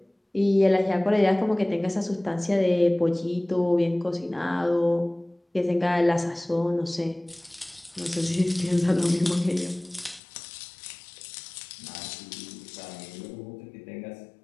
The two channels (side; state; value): right; drops out; at 10.2 s